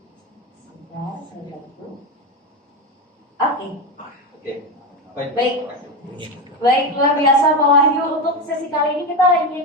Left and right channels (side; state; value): both; normal; correlation 0.15